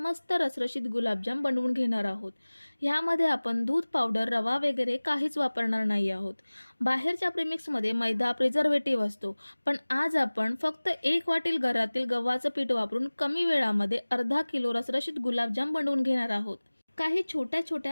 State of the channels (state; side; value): inverted; both; correlation -1.00